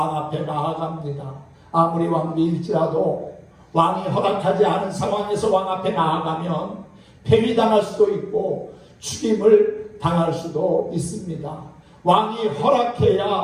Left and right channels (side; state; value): both; identical; correlation 1.00